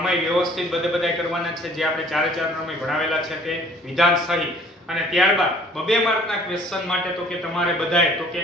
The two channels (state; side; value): normal; both; correlation 0.54